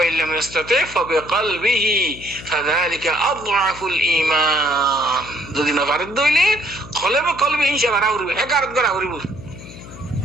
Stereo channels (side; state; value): left; noise; hum, 16 dB below the sound